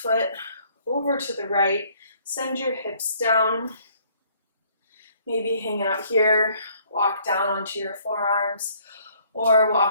over to the right. Send your hips down. Maybe hang out here, walk down onto your forearms, or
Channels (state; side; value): inverted; both; correlation -0.62